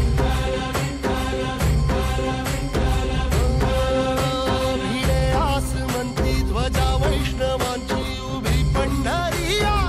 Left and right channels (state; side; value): identical; both; correlation 1.00